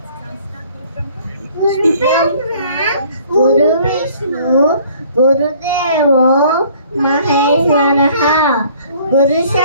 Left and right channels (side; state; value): both; inverted; correlation -0.56